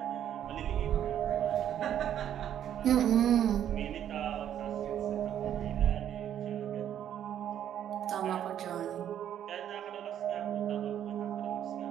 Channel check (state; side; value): quieter; left; 10.3 dB